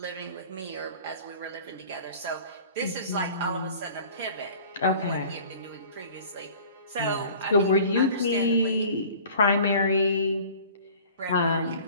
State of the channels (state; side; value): inverted; both; correlation -0.46